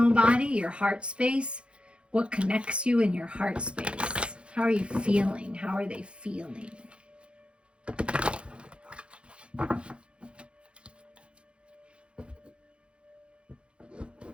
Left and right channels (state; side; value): late; left; 0.058 ms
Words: body, your heart space. What connects you in your heart space? How are you feeling? How are they feeling?